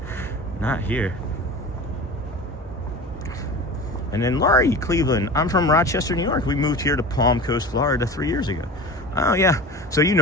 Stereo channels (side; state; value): both; normal; correlation 0.34